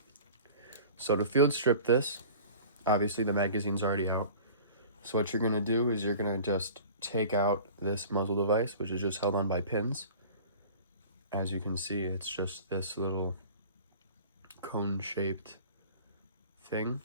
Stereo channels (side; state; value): both; inverted; correlation -0.43